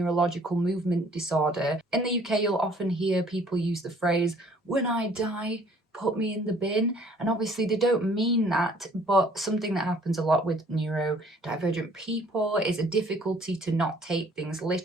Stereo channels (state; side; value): normal; both; correlation 0.58